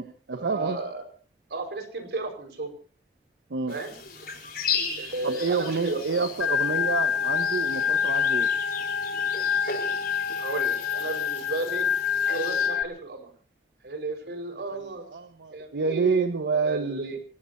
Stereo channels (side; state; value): both; normal; correlation 0.27